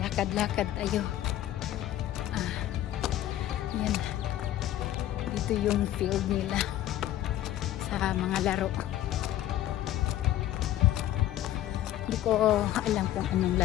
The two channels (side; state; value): right; quieter; 13.1 dB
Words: tayo. Yan, dito yung field nila sa mga laro. Hindi ko alam kung anong